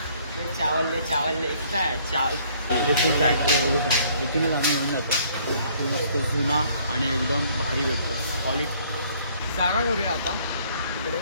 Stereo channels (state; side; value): inverted; both; correlation -0.62